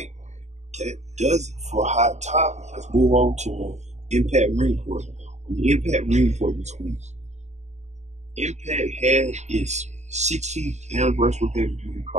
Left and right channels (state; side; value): late; left; 0.33 ms